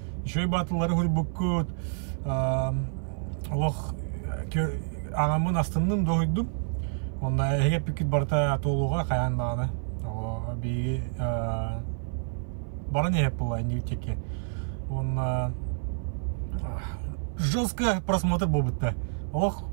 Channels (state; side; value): silent; left; 55 dB below the other